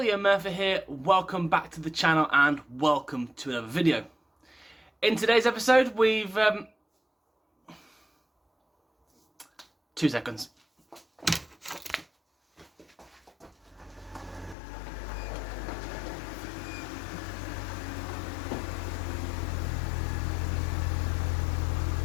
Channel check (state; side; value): drops out; right; at 14.6 s